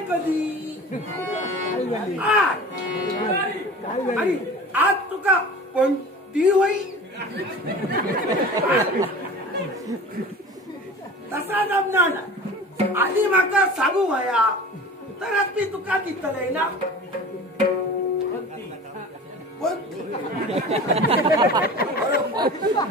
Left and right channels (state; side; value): normal; both; correlation 0.38